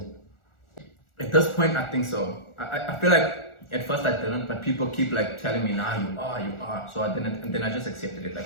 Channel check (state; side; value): late; right; 1.4 ms